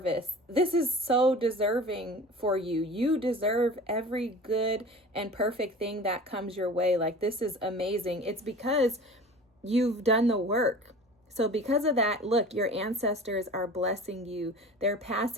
This is so deserving for you. You deserve every good and perfect thing that comes your way. This is amazing. It's because you've done the work. So because of that, look, your ancestors are blessing you. They're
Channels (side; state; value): both; normal; correlation 0.40